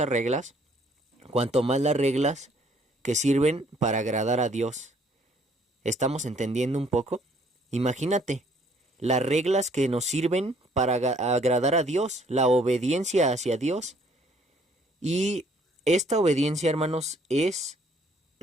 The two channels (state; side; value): normal; both; correlation 0.62